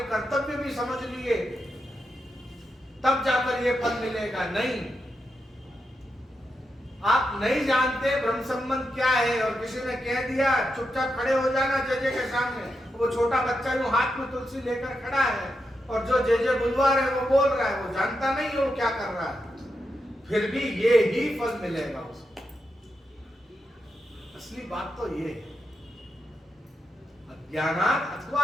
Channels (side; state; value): both; normal; correlation 0.86